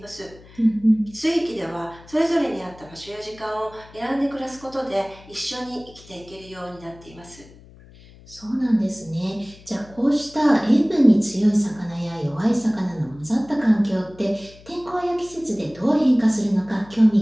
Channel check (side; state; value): left; noise; hum, 22 dB below the sound